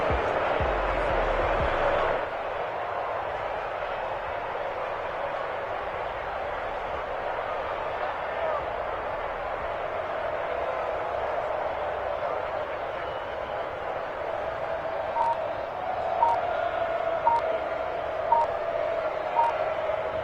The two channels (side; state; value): both; identical; correlation 1.00